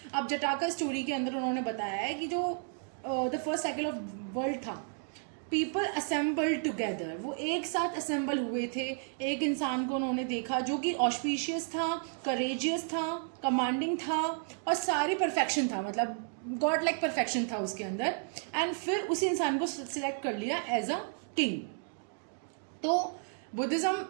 अब जटाका स्टोरी के अंदर उन्होंने बताया है कि जो the first cycle of world था, पीपल असेंबल टुगेदर, वो एक साथ असेंबल हुए थे. एक इंसान को उन्होंने देखा जो कि ऑस्पिशियस था, करेजियस था, कमांडिंग था और सारी परफेक्शन था, मतलब गॉड लाइक परफेक्शन था उसके अंदर. एंड फिर उसी इंसान को सिलेक्ट कर लिया एज अ किंग. तो बुद्धिज्म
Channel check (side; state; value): left; silent; 56 dB below the other